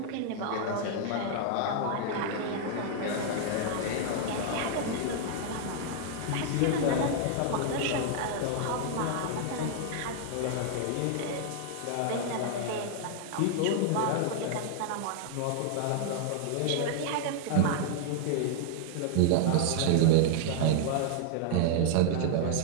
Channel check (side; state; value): both; different; correlation 0.00